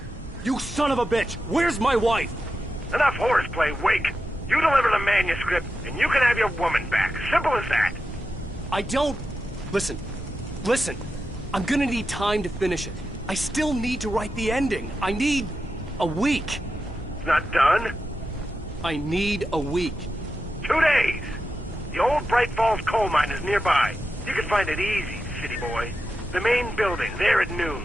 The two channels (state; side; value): normal; both; correlation 0.89